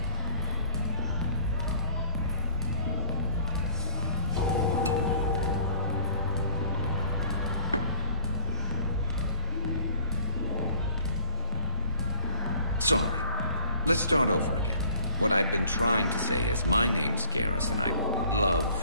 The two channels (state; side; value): inverted; both; correlation -0.34